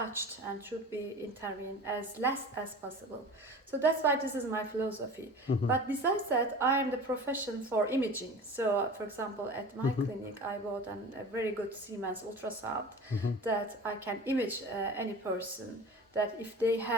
and should be intervened as less as possible. So that's why this is my philosophy. But besides that, I am the profession for imaging. So for example, at my clinic I bought a very good Siemens ultrasound that I can image any person, that if they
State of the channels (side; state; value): both; normal; correlation 0.37